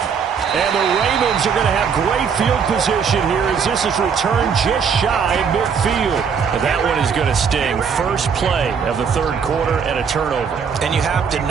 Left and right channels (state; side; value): quieter; left; 6.5 dB